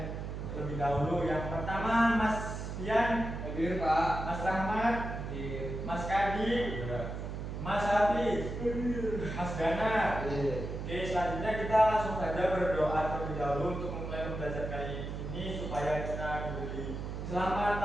lebih dahulu. Yang pertama Mas Pian, Hadir, Pak. Mas Rahmat, Hadir. Mas Kadi, Mas Hafiz, Mas Gana. Oke, selanjutnya kita langsung saja berdoa terlebih dahulu untuk memulai pembelajaran kali ini supaya kita diberi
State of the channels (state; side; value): noise; right; hum, 6 dB below the sound